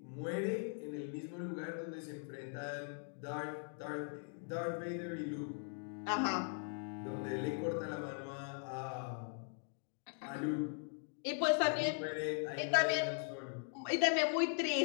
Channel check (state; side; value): silent; right; 51 dB below the other